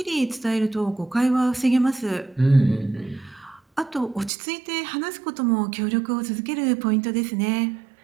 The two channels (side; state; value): left; drops out; at 4.3 s